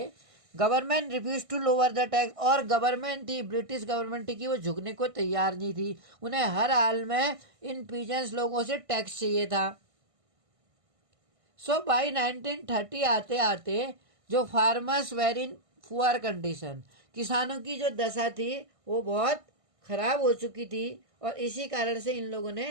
Government refuse to lower the tax, और गवर्नमेंट थी, ब्रिटिश गवर्नमेंट थी कि वो झुकने को तैयार नहीं थी। उन्हें हर हाल में इन पीजेंट्स लोगों से टैक्स चाहिए था। सो बाई 1930 आते आते जो farmers were in poor condition, किसानों की जो दशा थी वो बहुत खराब हो चुकी थी, और इसी कारण से इन लोगों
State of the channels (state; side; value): late; left; 1.5 ms